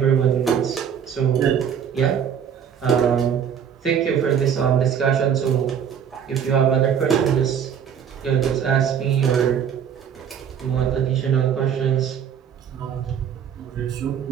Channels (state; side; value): quieter; left; 8.1 dB